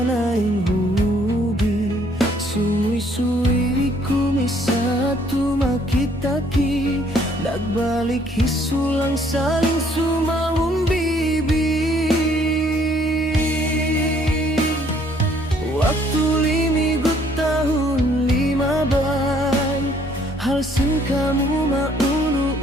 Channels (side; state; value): both; normal; correlation 0.63